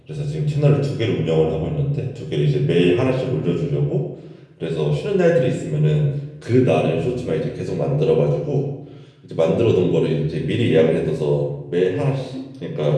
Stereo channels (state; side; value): identical; both; correlation 1.00